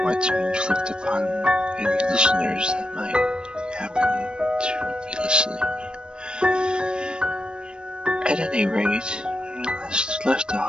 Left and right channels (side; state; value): left; late; 0.053 ms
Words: want to inflict upon any listeners that might happen to be listening. At any rate, when we last left